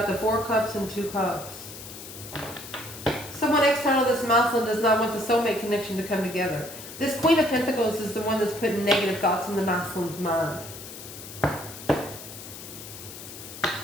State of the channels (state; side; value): noise; left; hiss, 13 dB below the sound